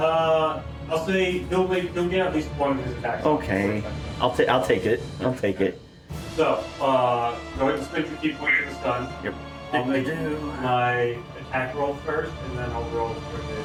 say he'll get at least one of his attacks. Okay. I'll take it. I'll take it. So, go ahead and spend your key point for the stun. Yep. I'll make my attack roll first, and then I'll roll for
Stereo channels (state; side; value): identical; both; correlation 1.00